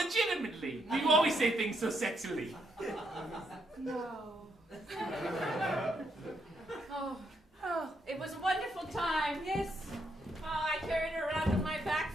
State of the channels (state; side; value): normal; both; correlation 0.76